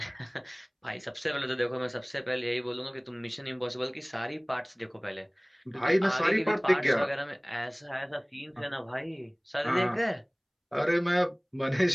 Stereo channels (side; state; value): both; identical; correlation 1.00